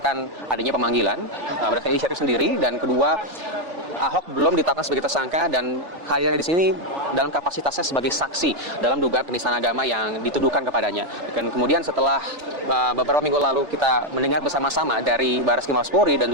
adanya pemanggilan, berdasarkan inisiatif sendiri, dan kedua Ahok belum ditetapkan sebagai tersangka dan hadirnya di sini dalam kapasitasnya sebagai saksi dalam dugaan penistaan agama yang dituduhkan kepadanya. Dan kemudian setelah beberapa minggu lalu kita mendengar bersama-sama dari Baris Krim Mabes Polri dan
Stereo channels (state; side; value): late; left; 3.4 ms